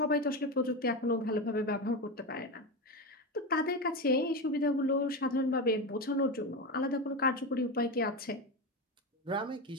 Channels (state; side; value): normal; both; correlation 0.17